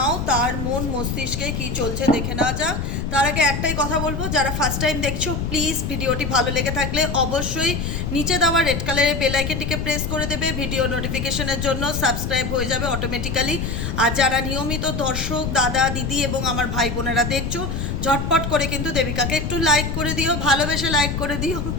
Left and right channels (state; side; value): noise; left; rumble, 3 dB below the sound